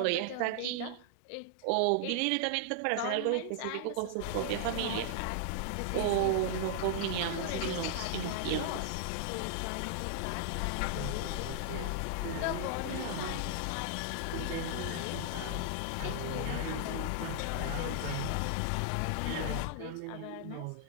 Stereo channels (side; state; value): both; different; correlation -0.01